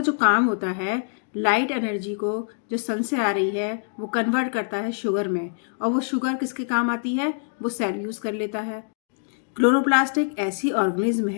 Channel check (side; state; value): right; silent; digital silence